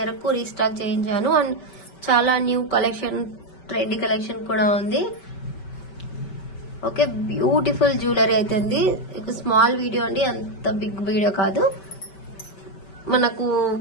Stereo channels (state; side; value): late; right; 5.2 ms